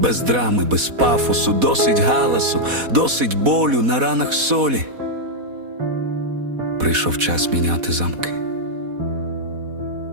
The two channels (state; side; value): late; left; 4.1 ms